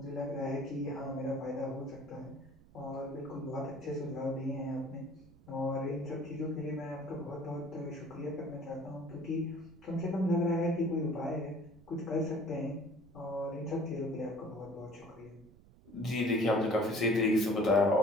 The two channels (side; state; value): right; noise; rumble, 24 dB below the sound